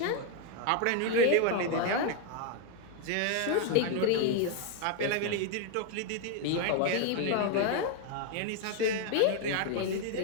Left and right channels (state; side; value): different; both; correlation 0.01